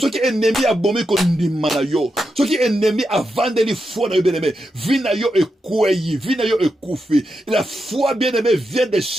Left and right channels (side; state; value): both; normal; correlation 0.86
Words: qui est ennemi a bombé qu'on dit manayo, ce qui est ennemi a vendu les foi bien aimé, vie na yo est kouyi, vie na yo est koufi. La foi bien aimé vient de